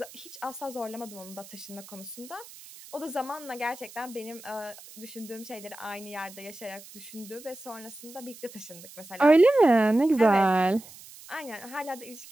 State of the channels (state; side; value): noise; right; hiss, 18 dB below the sound